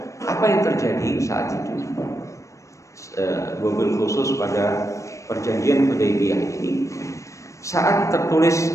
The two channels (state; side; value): late; right; 0.15 ms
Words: apa yang terjadi saat itu? Wabil khusus pada perjanjian Hudaybiyah ini, saat